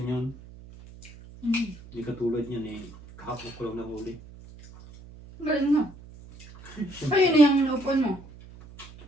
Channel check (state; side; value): noise; right; hum, 19 dB below the sound